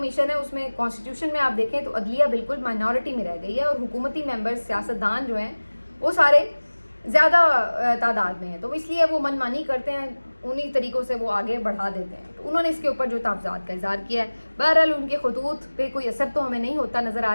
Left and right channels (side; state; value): both; inverted; correlation -1.00